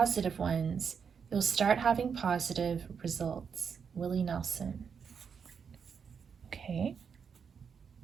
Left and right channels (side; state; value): left; quieter; 6.5 dB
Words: ones, you'll start having positive results." Willie Nelson. Okay.